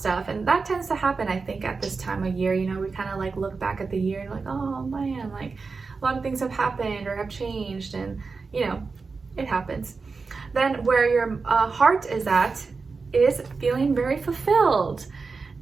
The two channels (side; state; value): left; quieter; 4.5 dB